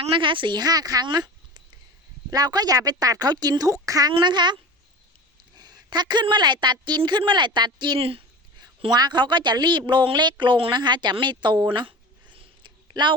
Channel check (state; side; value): normal; both; correlation 0.34